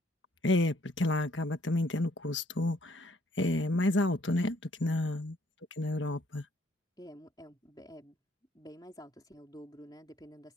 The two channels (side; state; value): both; normal; correlation 0.65